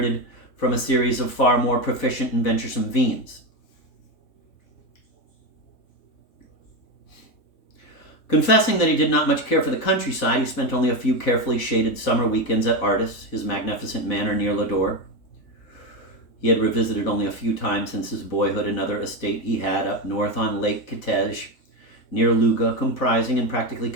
from a series of far more proficient and venturesome Veens. Confessing that he did not much care for the countryside, he spent only a few carefully shaded summer weekends at Artis, his magnificent manor near Ladore. He had revisited only a few times since his boyhood another estate he had up north on Lake Kitej, near Luga, comprising and practically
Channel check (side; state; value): right; late; 3.6 ms